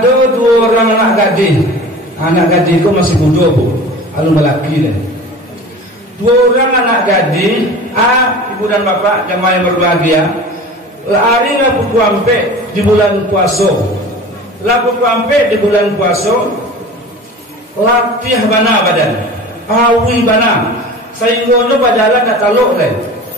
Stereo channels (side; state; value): both; normal; correlation 0.38